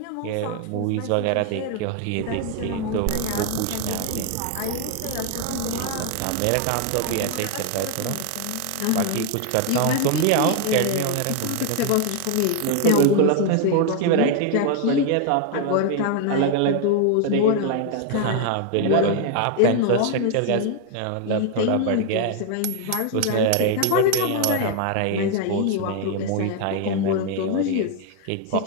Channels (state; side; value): different; both; correlation 0.00